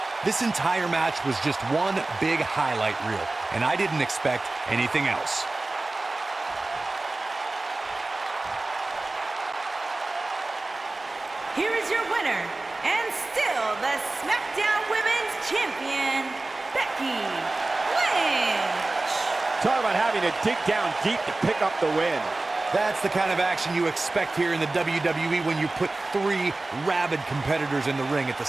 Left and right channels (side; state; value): left; quieter; 3.1 dB